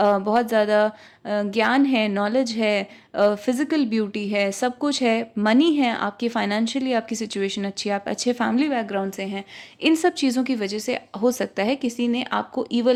ज़्यादा ज्ञान है, नॉलेज है, फिज़िकल ब्यूटी है, सब कुछ है, मनी है, आपकी फाइनेंशियली आपकी सिचुएशन अच्छी है, आप अच्छे फैमिली बैकग्राउंड से हैं। इन सब चीज़ों की वजह से हो सकता है किसी ने आपको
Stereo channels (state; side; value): identical; both; correlation 1.00